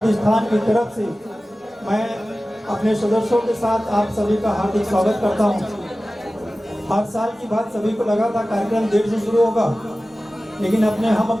स्थान की तरफ से मैं अपने सदस्यों के साथ आप सभी का हार्दिक स्वागत करता हूं। हर साल की बात सभी को लगा था कार्यक्रम 1:30 से शुरू होगा, लेकिन हम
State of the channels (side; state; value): both; normal; correlation 0.96